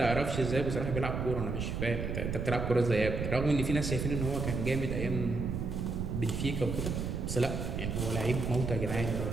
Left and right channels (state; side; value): noise; right; rumble, 2 dB below the sound